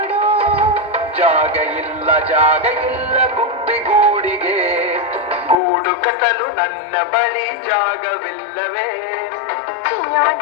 ಜಾಗ ಇಲ್ಲ ಗುಬ್ಬಿಗೂಡಿಗೆ, ಗೂಡು ಕಟ್ಟಲು ನನ್ನ ಬಳಿ ಜಾಗವಿಲ್ಲವೇ? ಚಿಯೋ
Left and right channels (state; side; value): drops out; right; at 5.6 s